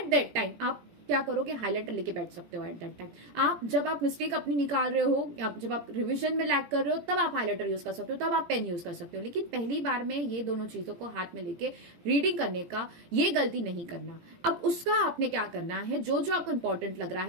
दैट टाइम आप क्या करोगे? हाईलाइटर लेके बैठ सकते हो। एट दैट टाइम आप जब आप मिस्टेक अपनी निकाल रहे हो, जब आप रिवीजन में लैग कर रहे हो, तब आप हाईलाइटर यूज कर सकते हो, तब आप पेन यूज कर सकते हो। लेकिन पहली बार में ये दोनों चीजों को हाथ में लेके रीडिंग करने का ये गलती नहीं करना। अब उसका आपने क्या करना है, जो जो आपको इंपॉर्टेंट लग रहा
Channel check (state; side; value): late; left; 17 ms